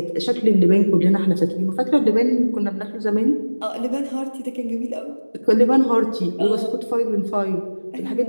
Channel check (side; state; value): both; inverted; correlation -1.00